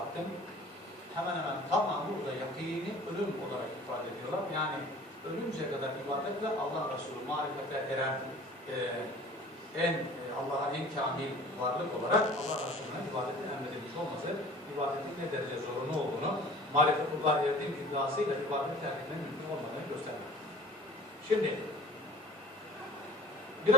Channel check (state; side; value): normal; both; correlation 0.45